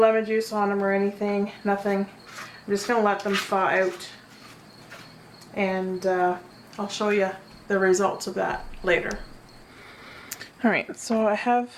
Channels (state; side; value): identical; both; correlation 1.00